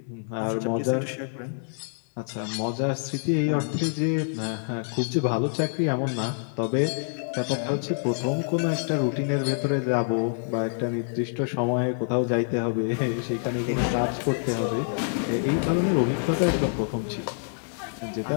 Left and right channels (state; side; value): silent; right; digital silence